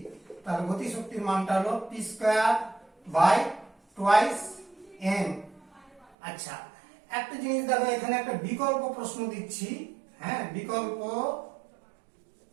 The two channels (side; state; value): left; drops out; at 6.2 s